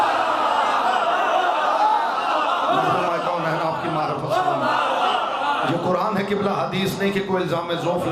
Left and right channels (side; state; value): both; identical; correlation 1.00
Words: आपकी मारिफत ये कुरान है किबला, हदीस नहीं कि कोई इल्ज़ाम ज़ौफ़